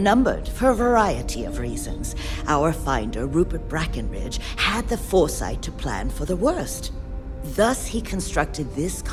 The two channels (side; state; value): both; identical; correlation 1.00